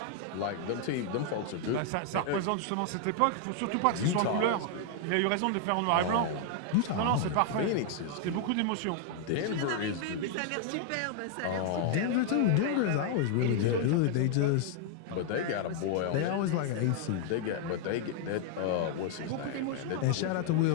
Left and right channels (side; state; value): both; different; correlation 0.00